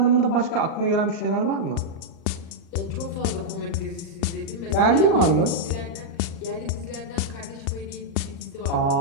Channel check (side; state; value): right; late; 38 ms